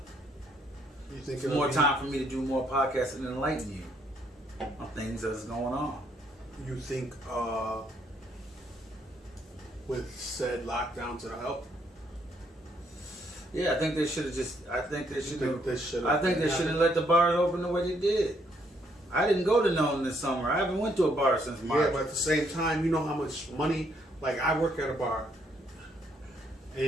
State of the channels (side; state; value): both; normal; correlation 0.71